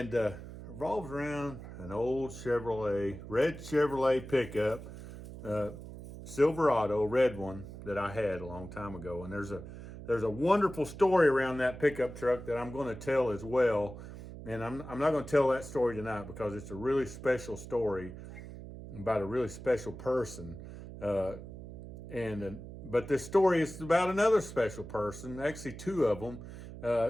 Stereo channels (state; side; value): noise; right; hum, 12 dB below the sound